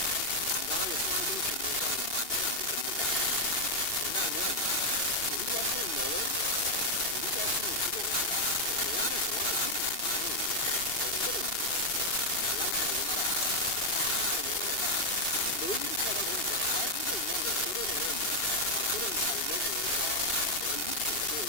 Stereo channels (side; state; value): right; late; 2.8 ms